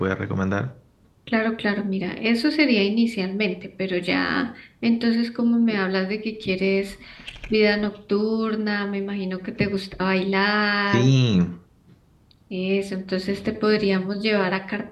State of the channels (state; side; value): identical; both; correlation 1.00